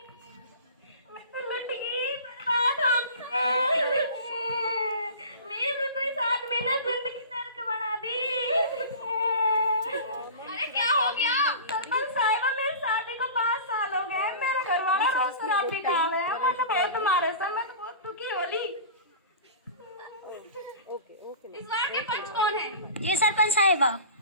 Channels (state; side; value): inverted; both; correlation -0.37